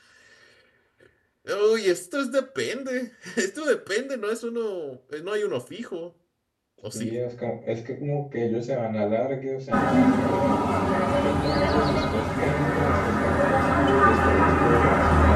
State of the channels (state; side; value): identical; both; correlation 1.00